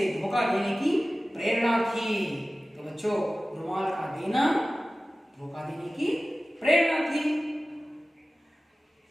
धोखा देने की प्रेरणा थी। तो बच्चों, रुमाल का देना धोखा देने की प्रेरणा थी।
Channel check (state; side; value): normal; both; correlation 0.96